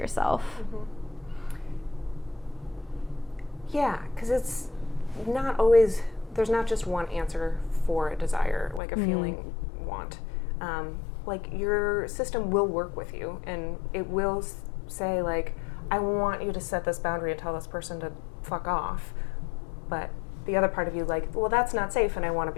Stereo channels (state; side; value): drops out; right; at 8.8 s